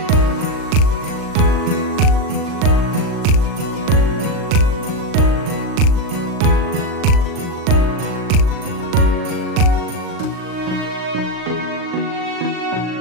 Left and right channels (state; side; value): late; left; 39 ms